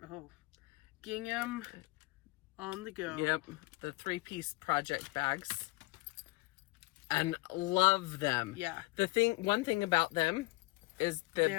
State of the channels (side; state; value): right; quieter; 22.7 dB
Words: gingham on the go. Yep, the 3-piece project bags. And love them. Yeah. One thing about them is the